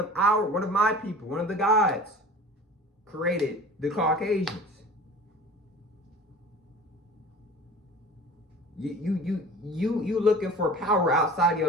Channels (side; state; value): both; normal; correlation 0.41